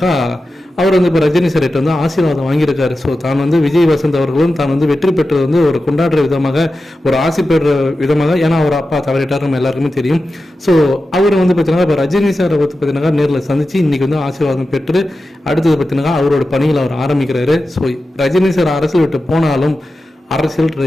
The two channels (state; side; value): normal; both; correlation 0.92